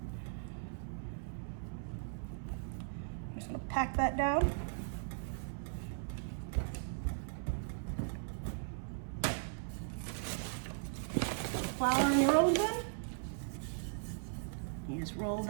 gonna pack that down. Flour in your rolling pin. You just roll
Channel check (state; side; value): silent; left; 52 dB below the other